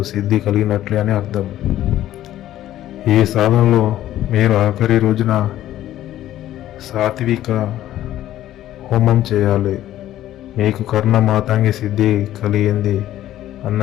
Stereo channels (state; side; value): quieter; right; 13.2 dB